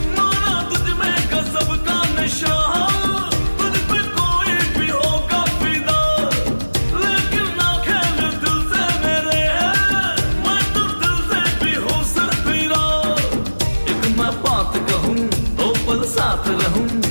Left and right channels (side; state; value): both; inverted; correlation -1.00